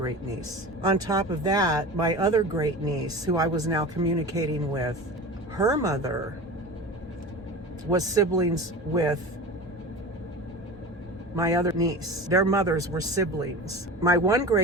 niece. On top of that, my other great niece, who I was now communicating with, her mother was siblings with my other niece. Their mothers were siblings. My one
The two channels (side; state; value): both; normal; correlation 0.31